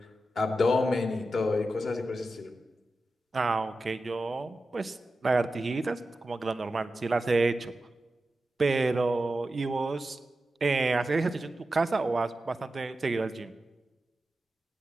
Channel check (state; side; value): normal; both; correlation 0.92